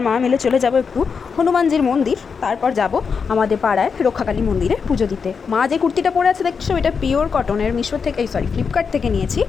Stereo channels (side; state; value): right; quieter; 5.7 dB